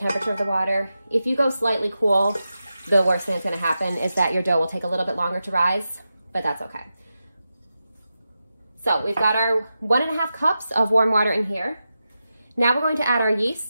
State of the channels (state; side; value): inverted; both; correlation -0.91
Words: of the water. If you go slightly cool, the worst thing that's going to happen is that your dough will take a little bit longer to rise, but that's okay. So we've got our 1½ cups of warm water in here. Now we're going to add our